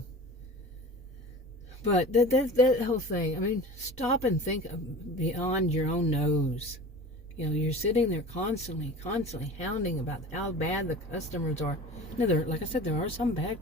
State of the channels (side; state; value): both; normal; correlation 0.37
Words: But that whole thing, I mean, stop and think beyond your own nose. You're sitting there constantly hounding about how bad the customers are. Now, like I said, there are some bad